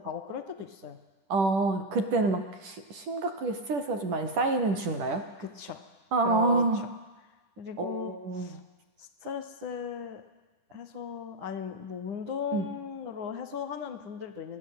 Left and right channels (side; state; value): left; late; 10 ms